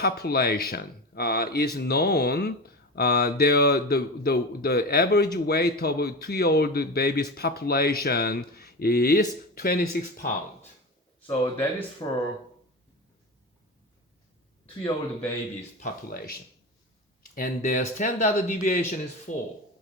is known. The average weight of a 2-year-old baby's population is 26 pounds. So that is for 2-year-old baby's population. And their standard deviation is 4.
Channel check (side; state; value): both; normal; correlation 0.25